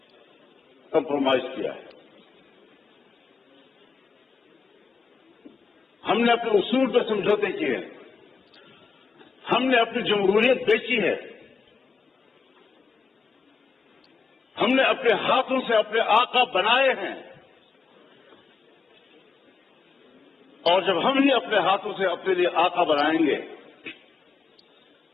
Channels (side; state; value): right; quieter; 4.9 dB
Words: کمپرومائز کیا ہے. ہم نے اپنے اصول پہ سمجھوتے کیے ہیں، ہم نے اپنی جمہوریت بیچی ہے، ہم نے اپنے ہاتھوں سے اپنے آقا بنائے ہیں، اور جب ہم ہی اپنے ہاتھوں سے اپنے لیے آقا بنائیں گے،